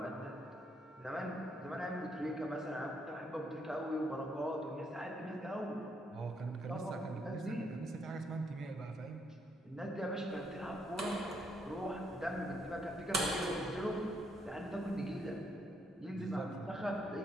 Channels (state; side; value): normal; both; correlation 0.74